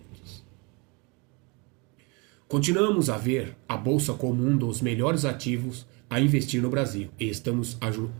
Continuamos a ver a Bolsa como um dos melhores ativos a investir no Brasil e estamos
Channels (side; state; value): left; quieter; 29.9 dB